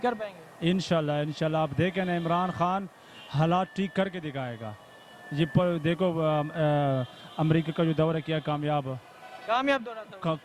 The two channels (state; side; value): identical; both; correlation 1.00